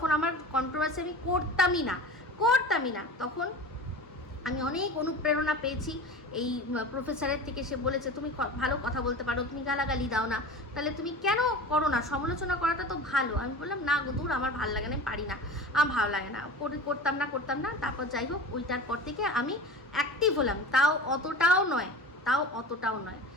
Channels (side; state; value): both; normal; correlation 0.34